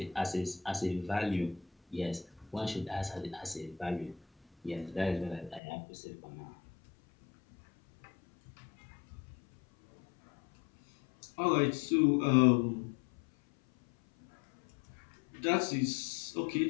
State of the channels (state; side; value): drops out; right; at 5.6 s